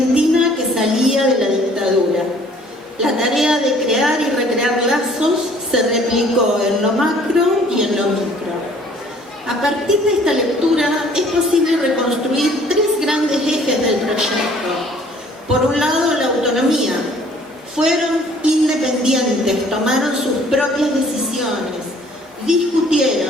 que salía de la dictadura. La tarea de crear y recrear lazos se replicó en lo macro y en lo micro. A partir de esta lectura es posible reconstruir tres grandes ejes del proyecto. Por un lado, la autonomía. Fueron independientes, tomaron sus propias decisiones,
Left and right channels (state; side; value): normal; both; correlation 0.56